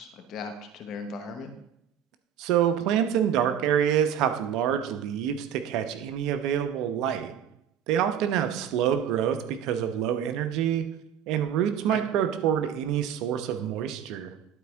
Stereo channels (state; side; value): quieter; left; 8.9 dB